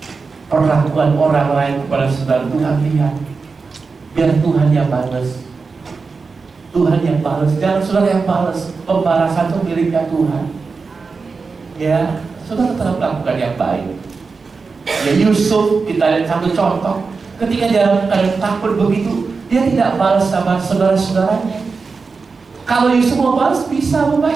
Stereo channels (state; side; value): quieter; left; 4.6 dB